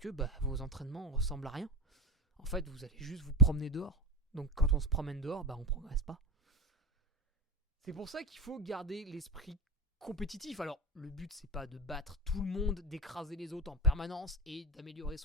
vos entraînements ressemblent à rien. En fait, vous allez juste vous promener dehors. Donc quand on se promène dehors, on progresse pas. C'est pour ça qu'il faut garder l'esprit compétitif. Alors, le but, c'est pas de battre tout le monde, d'écraser les autres en permanence et d'améliorer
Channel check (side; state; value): both; normal; correlation 0.20